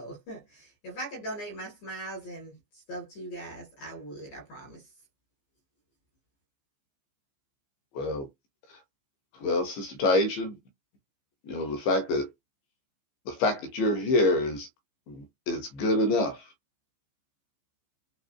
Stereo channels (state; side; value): late; right; 15 ms